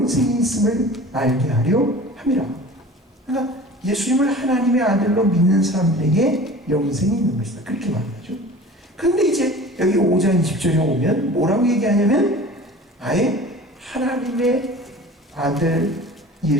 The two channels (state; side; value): normal; both; correlation 0.41